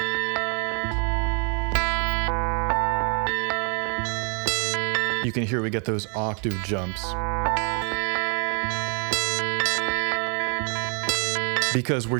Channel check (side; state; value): left; quieter; 39.0 dB